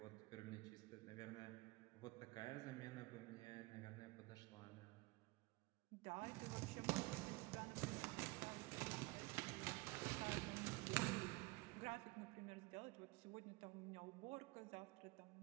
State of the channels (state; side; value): quieter; left; 23.6 dB